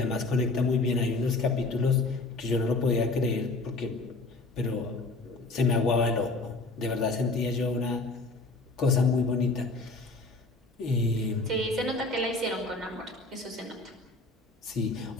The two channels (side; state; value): right; quieter; 3.2 dB